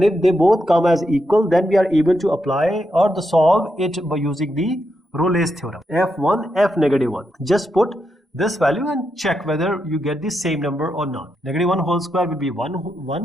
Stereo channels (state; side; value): normal; both; correlation 0.83